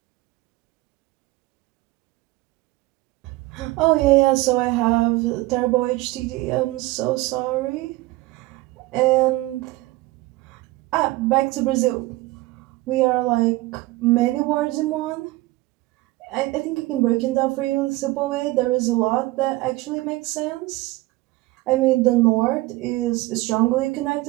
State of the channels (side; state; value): left; quieter; 19.8 dB